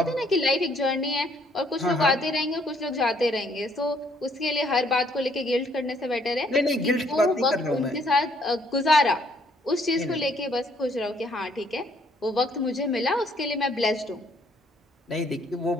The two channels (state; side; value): normal; both; correlation 0.66